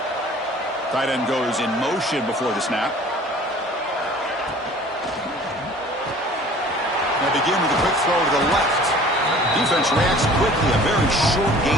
Tight end goes in motion before the snap. They begin with a quick throw to the left. Defense reacts quickly. A very short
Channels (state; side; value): normal; both; correlation 0.48